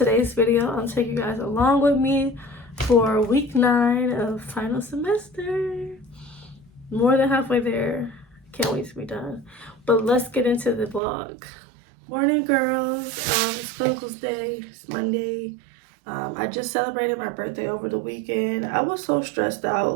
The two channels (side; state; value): left; drops out; at 11.0 s